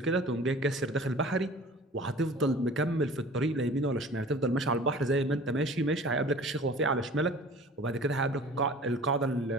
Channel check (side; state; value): both; normal; correlation 0.44